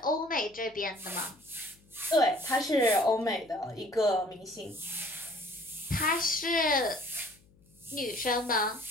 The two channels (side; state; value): left; noise; hum, 29 dB below the sound